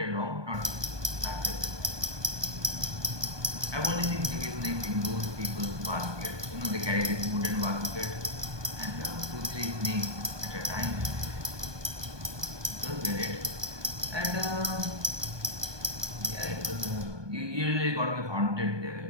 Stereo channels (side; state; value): left; late; 1.2 ms